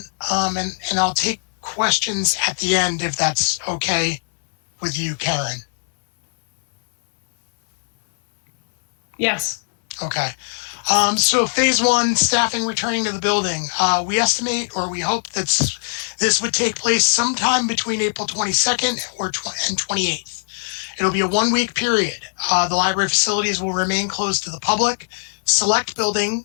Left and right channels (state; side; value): silent; right; 65 dB below the other